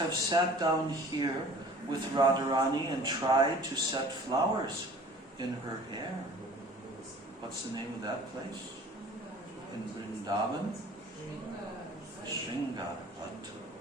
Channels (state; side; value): normal; both; correlation 0.47